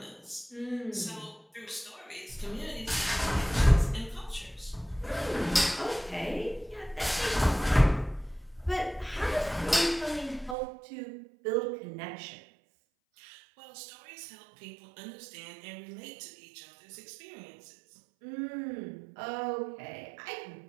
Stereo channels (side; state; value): left; drops out; at 10.6 s